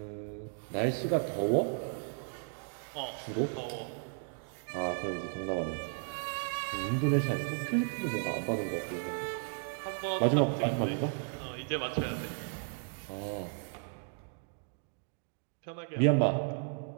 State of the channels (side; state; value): left; silent; 55 dB below the other